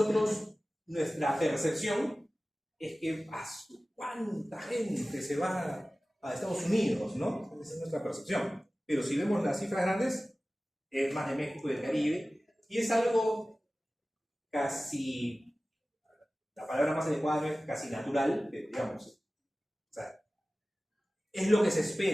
nuestra percepción es que ¿cuánta gente se va a Estados Unidos, ¿no? Esa es nuestra percepción. Pero si vemos las cifras grandes, es más de México y del Caribe, y es algo casi, la palabra más adecuada es casi natural, digamos. O sea, es lo que se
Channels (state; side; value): normal; both; correlation 0.97